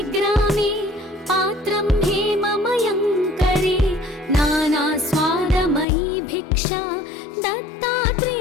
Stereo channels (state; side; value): drops out; right; at 5.9 s